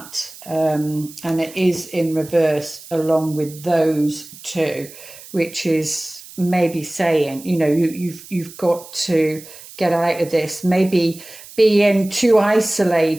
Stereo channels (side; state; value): right; noise; hiss, 18 dB below the sound